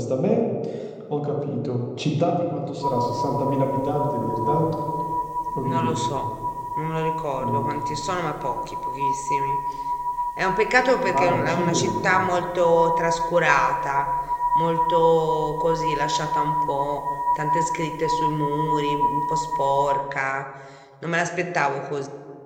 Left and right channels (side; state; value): both; identical; correlation 1.00